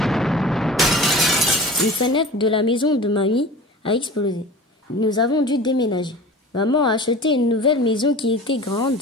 Une fenêtre de la maison de mamie a explosé. Nous avons dû déménager. Maman a acheté une nouvelle maison qui était grande.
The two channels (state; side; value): normal; both; correlation 0.37